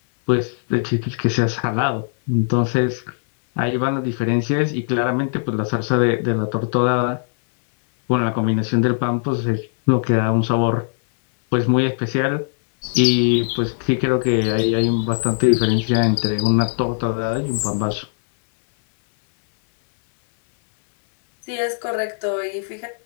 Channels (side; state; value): right; silent; 61 dB below the other